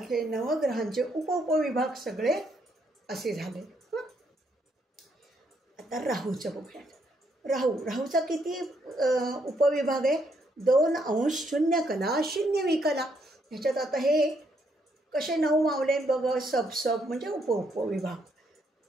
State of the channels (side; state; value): both; normal; correlation 0.74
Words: नवग्रहांचे उपविभाग सगळे असे झाले. आता राहूचं बघूयात. राहूचा किती उपविभाग आहे? 2° 0 कला 0 विकला. ह्याच्यात आता हे कसे 9 मावले बघ, सब म्हणजे उपविभाग.